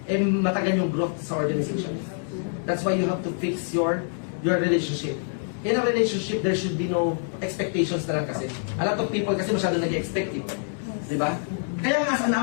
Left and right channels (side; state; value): right; silent; digital silence